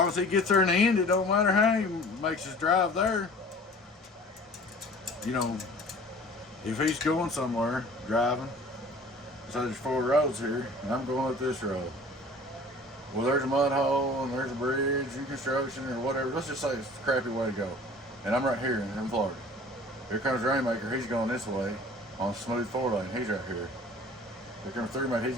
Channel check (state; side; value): normal; both; correlation 0.46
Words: as he gets there in the end, it don't matter how he makes his drive there. You know, if he's going somewhere, driving, so there's 4 roads here, and I'm going up this road. Well, there's a mud hole, and there's a bridge, and construction, or whatever. Let's just say it's a crappy way to go. And I'm right here in Florida. Here comes Rainmaker, he's going this way on smooth 4-lane, he's right here. Here comes 3-mate,